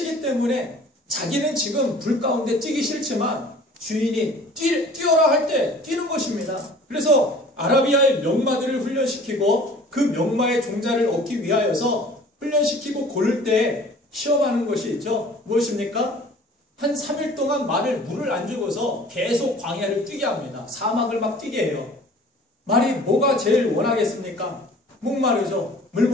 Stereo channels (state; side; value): normal; both; correlation 0.48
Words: 때문에 자기는 지금 불 가운데 뛰기 싫지만 주인이 뛰어라 할 때 뛰는 것입니다. 그래서 아라비아의 명마들을 훈련시키고 그 명마의 종자를 얻기 위하여서 훈련시키고 고를 때 시험하는 것이 있죠. 무엇입니까? 한 3일 동안 물을 안 주고서 계속 광야를 뛰게 합니다. 사막을 막 뛰게 해요. 말이 뭐가 제일 원하겠습니까? 목마르죠. 물